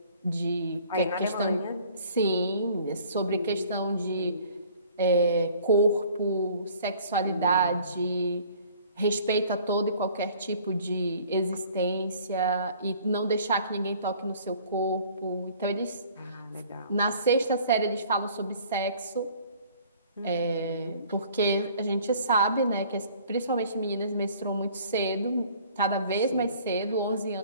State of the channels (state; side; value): inverted; both; correlation -0.53